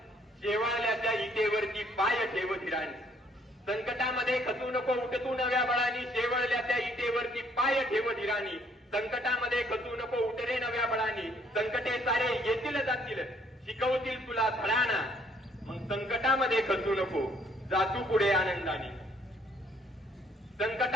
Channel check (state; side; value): normal; both; correlation 0.65